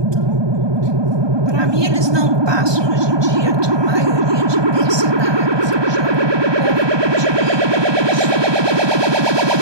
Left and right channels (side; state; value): left; late; 1.2 ms